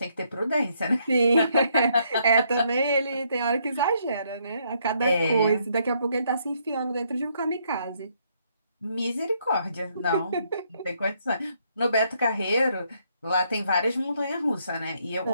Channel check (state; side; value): inverted; both; correlation -0.72